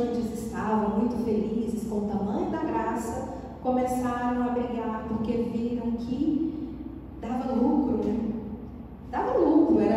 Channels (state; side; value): identical; both; correlation 1.00